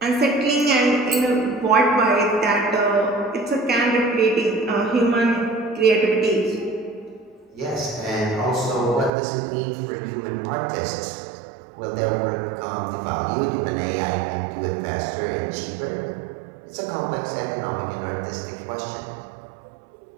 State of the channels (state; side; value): drops out; left; at 9.1 s